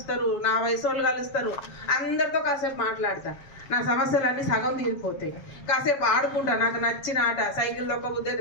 నా వయసు వాళ్ళు కలుస్తారు. అందరితో కాసేపు మాట్లాడతా, నా సమస్యలన్నీ సగం తీరిపోతాయి. కాసేపు ఆడుకుంటా, నాకు నచ్చిన ఆట. సైకిల్ దొక్కబుద్ది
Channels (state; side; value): late; right; 7.4 ms